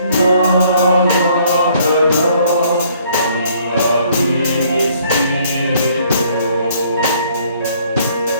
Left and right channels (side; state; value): both; inverted; correlation -0.63